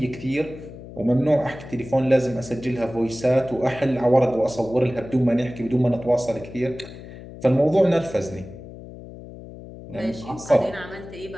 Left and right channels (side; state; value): left; noise; hum, 15 dB below the sound